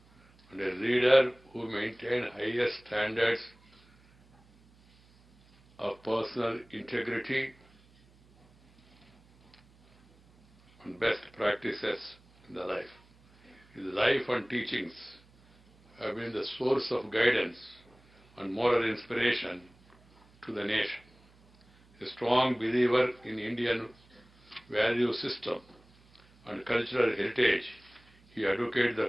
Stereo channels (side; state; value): right; noise; hum, 29 dB below the sound